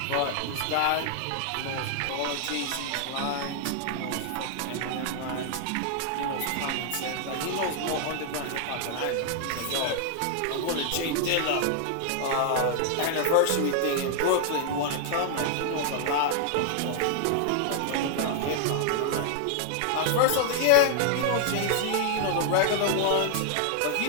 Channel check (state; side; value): different; both; correlation 0.00